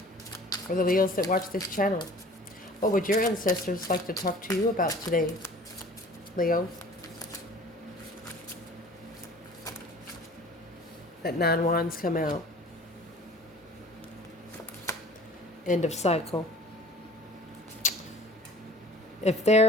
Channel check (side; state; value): both; normal; correlation 0.47